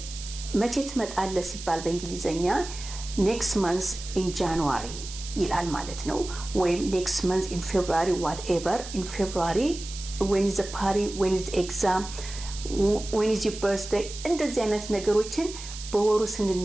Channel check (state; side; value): noise; right; hiss, 12 dB below the sound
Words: መቼ ትመጣለህ ሲባል በእንግሊዘኛ next month in January ይላል ማለት ነው ወይም next month in February whatever in February when is the party when is the exam when is your birthday እንደዚህ አይነት ነገሮችን በወሩ